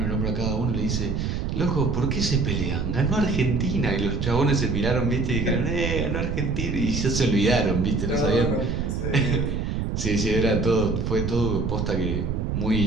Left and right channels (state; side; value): noise; right; rumble, 1 dB below the sound